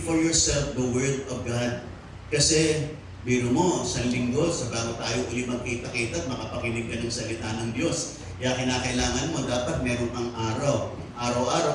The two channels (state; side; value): identical; both; correlation 1.00